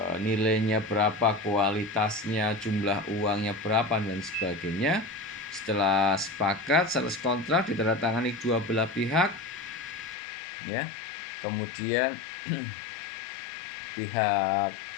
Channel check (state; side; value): drops out; right; at 10.2 s